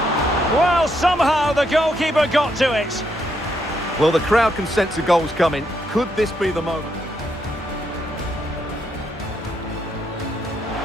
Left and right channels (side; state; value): both; normal; correlation 0.77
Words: Well, somehow the goalkeeper got to it. Well, the crowd can sense the goal's coming. Could this be the moment?